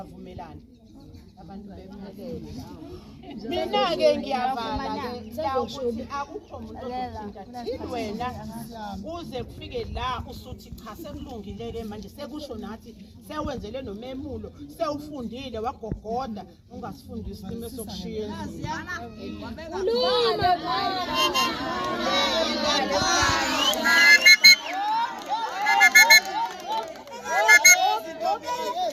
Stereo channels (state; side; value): identical; both; correlation 1.00